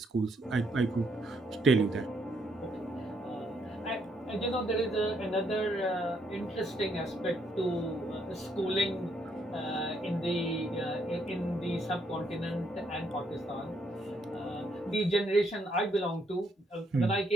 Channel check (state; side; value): normal; both; correlation 0.73